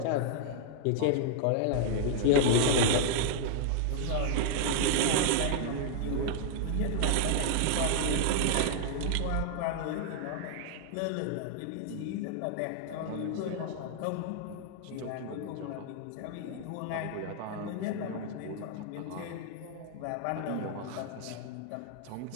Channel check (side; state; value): both; different; correlation -0.01